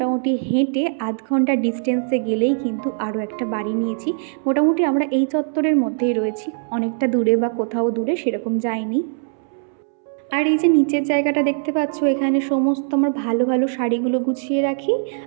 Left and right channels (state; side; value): silent; left; 65 dB below the other